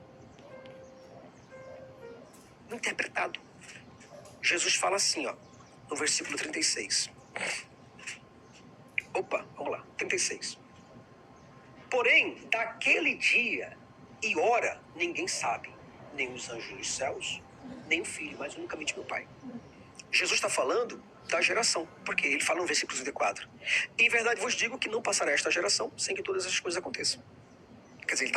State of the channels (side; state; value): both; identical; correlation 1.00